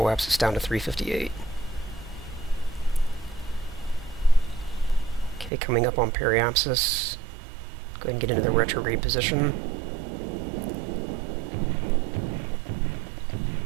down to 358. Okay, coming up on periapsis. Go ahead and get into the retrograde position.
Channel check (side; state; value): left; drops out; at 5.5 s